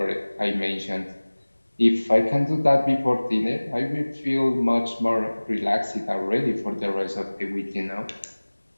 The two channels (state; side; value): inverted; both; correlation -1.00